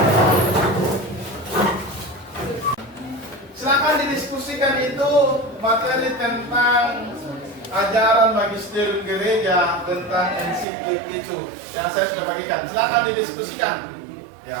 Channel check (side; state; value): left; drops out; at 10.7 s